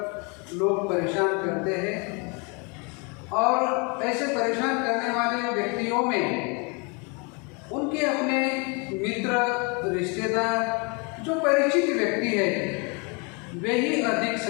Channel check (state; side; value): quieter; right; 32.3 dB